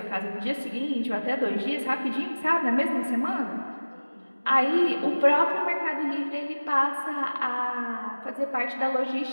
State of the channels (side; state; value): both; inverted; correlation -1.00